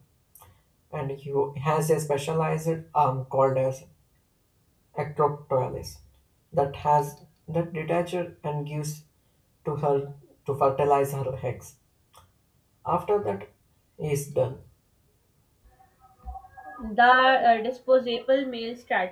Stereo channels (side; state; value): both; identical; correlation 1.00